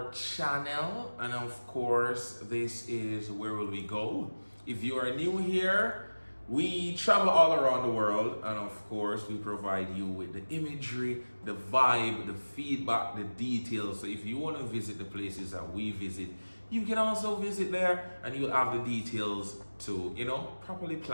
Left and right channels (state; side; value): inverted; both; correlation -1.00